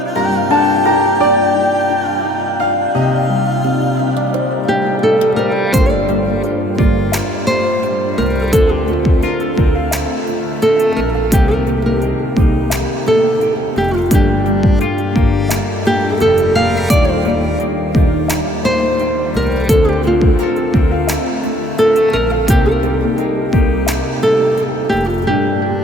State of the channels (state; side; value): normal; both; correlation 0.66